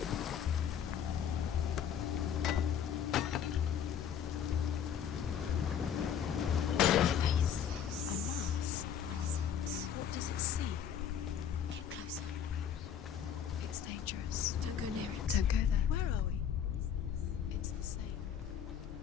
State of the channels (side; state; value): right; quieter; 8.5 dB